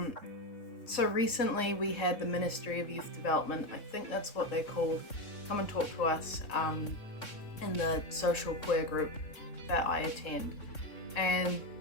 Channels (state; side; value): late; right; 3.7 ms